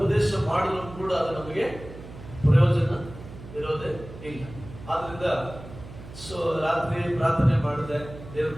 ಮಾಡಿದ್ರು ಕೂಡ ಅದು ನಮಗೆ ಪ್ರಯೋಜನ ಇರೋದೇ ಇಲ್ಲ. ಆದ್ರಿಂದ ರಾತ್ರಿ ಪ್ರಾರ್ಥನೆ ಮಾಡಿದೆ ದೇವ್ರ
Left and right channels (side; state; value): right; noise; hum, 15 dB below the sound